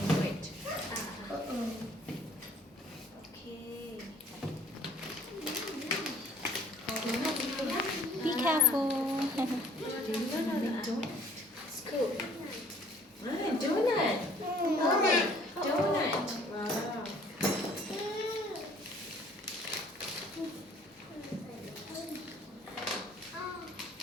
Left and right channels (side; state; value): both; normal; correlation 0.56